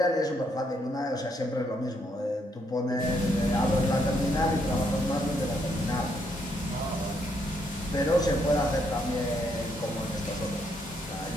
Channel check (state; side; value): normal; both; correlation 0.74